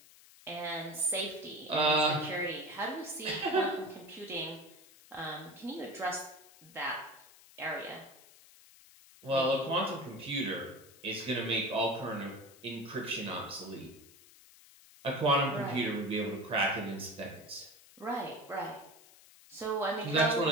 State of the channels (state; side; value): noise; left; hiss, 23 dB below the sound